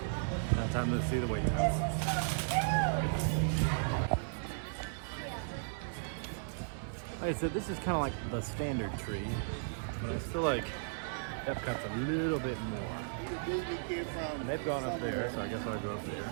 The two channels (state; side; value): silent; left; 54 dB below the other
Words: Now time to see the wait times. Like I said, this is kind of like the standard tree, but I feel like Epcot's a little bit more. And they've gone up there, so I guess I'll go up there.